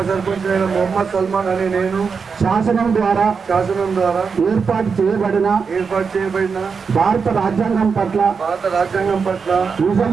మొహమ్మద్ సల్మాన్ అనే నేను శాసనం ద్వారా ఏర్పాటు చేయబడిన భారత రాజ్యాంగం పట్ల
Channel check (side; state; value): left; quieter; 5.6 dB